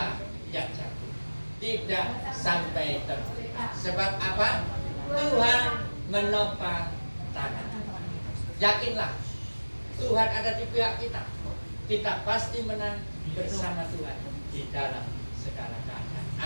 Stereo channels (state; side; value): inverted; both; correlation -1.00